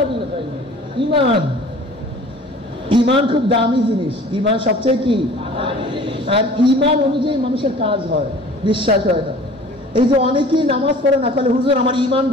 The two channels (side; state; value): both; normal; correlation 0.46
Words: বিল গায়ব। ঈমান, ঈমান খুব দামি জিনিস। ঈমান সবচেয়ে কি? আর ঈমান অনুযায়ী মানুষের কাজ হয়, বিশ্বাস হয় না। এই যে অনেকেই নামাজ পড়ে না, বলে হুজুর আমার ঈমান